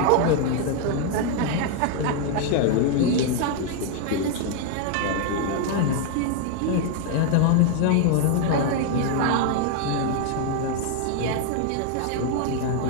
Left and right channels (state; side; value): different; both; correlation 0.00